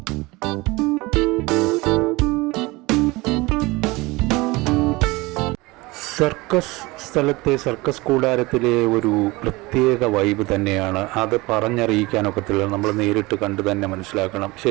സർക്കസ് സ്ഥലത്തെ സർക്കസ് കൂടാരത്തിലെ ഒരു പ്രത്യേക വൈബ് തന്നെയാണ്. അത് പറഞ്ഞറിയിക്കാനൊക്കത്തില്ല, നമ്മൾ നേരിട്ട് കണ്ട് തന്നെ മനസ്സിലാക്കണം.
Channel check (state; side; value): quieter; left; 22.5 dB